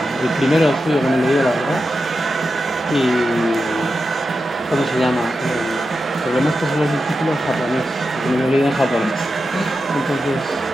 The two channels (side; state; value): both; normal; correlation 0.89